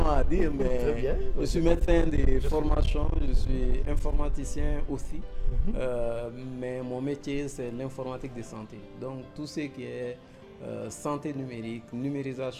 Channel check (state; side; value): identical; both; correlation 1.00